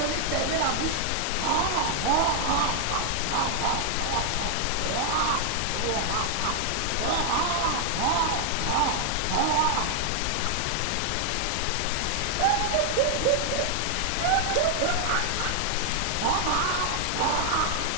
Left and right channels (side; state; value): both; different; correlation 0.00